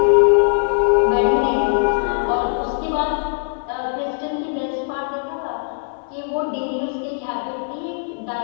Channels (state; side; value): silent; right; digital silence